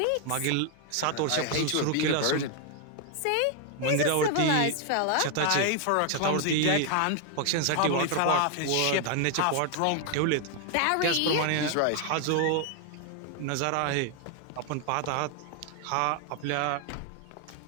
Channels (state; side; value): different; both; correlation 0.00